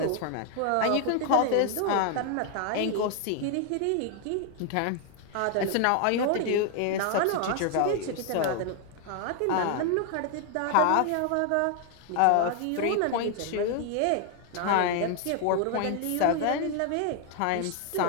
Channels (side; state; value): both; different; correlation 0.00